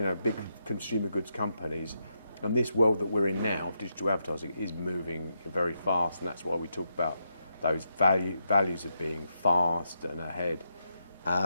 know, big consumer goods companies. And this world that we're in now of digital advertising is moving very fast, and that's why we talk about those values of being fast and ahead.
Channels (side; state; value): both; inverted; correlation -0.82